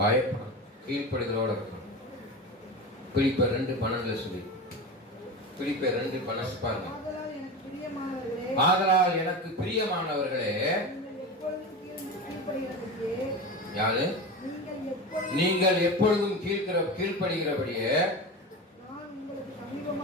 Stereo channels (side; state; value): both; normal; correlation 0.26